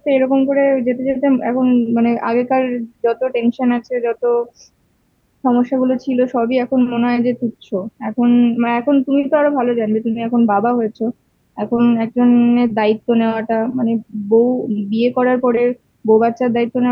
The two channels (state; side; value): identical; both; correlation 1.00